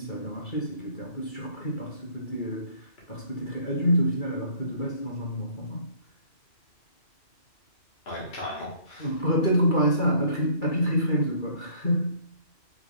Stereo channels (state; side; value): late; right; 2.3 ms